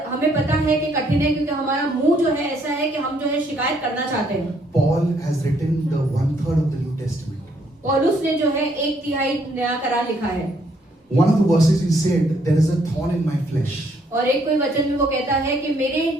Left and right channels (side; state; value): both; normal; correlation 0.69